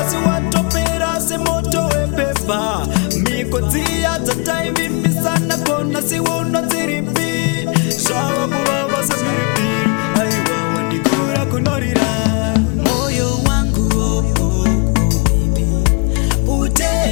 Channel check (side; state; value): right; quieter; 32.5 dB